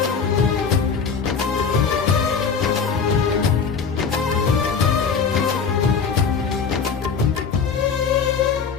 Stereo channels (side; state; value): right; quieter; 5.9 dB